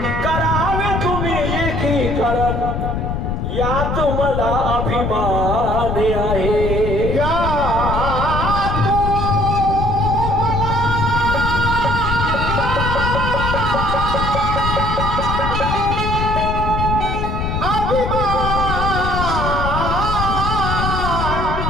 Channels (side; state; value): left; noise; rumble, 2 dB below the sound